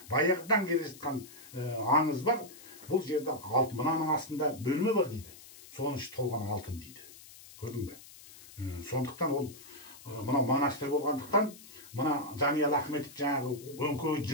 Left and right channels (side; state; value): left; noise; hiss, 19 dB below the sound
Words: баяғыдан келе жатқан аңыз бар. Бұл жерде алтын. Мынаның астында бөлме бар дейді. Соның іші толған алтын дейді. Көрдің бе? Сондықтан ол мынау монастырь болғандықтан, мына Жаниял Ахметов жаңағы өңкөй